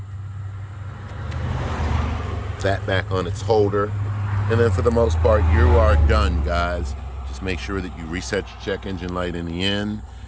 That back on its holder. And then for the most part, you are done, guys. Just make sure that you reset your check engine light in the end.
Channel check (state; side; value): identical; both; correlation 1.00